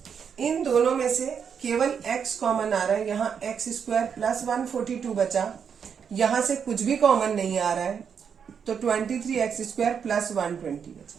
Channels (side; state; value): left; quieter; 7.1 dB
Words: इन दोनों में से केवल x कॉमन आ रहा है, यहाँ x² प्लस 142 बचा, यहाँ से कुछ भी कॉमन नहीं आ रहा है, तो 23x² प्लस 120 बचा।